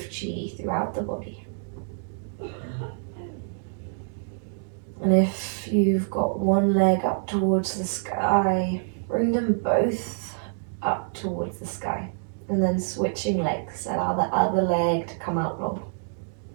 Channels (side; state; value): left; silent; digital silence